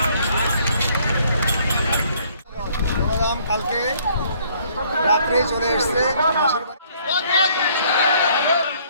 বলরাম কালকে রাত্রে চলে এসছে মাসির বাড়ি।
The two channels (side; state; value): both; inverted; correlation -0.62